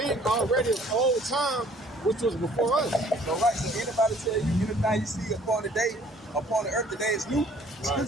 already of old time, which was before us. So right, so anybody tell you anything you see upon the earth today is new, Scripture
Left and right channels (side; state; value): both; normal; correlation 0.57